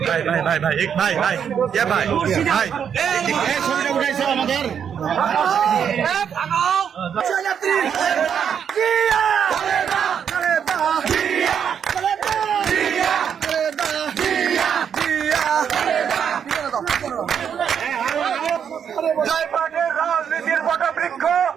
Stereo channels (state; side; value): quieter; left; 7.9 dB